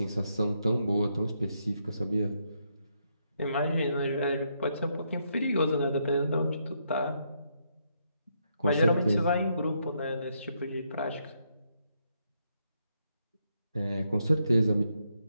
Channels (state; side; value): inverted; both; correlation -0.77